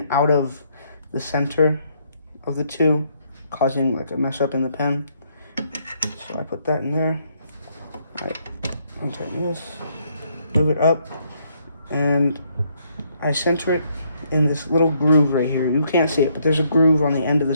out of the center of the two, causing like a mess up in the pen. So I put that in there. I untighten this, move it up, and I center it in this little groove right here. You can't see it, but there's a groove on the end of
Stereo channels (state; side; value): inverted; both; correlation -0.71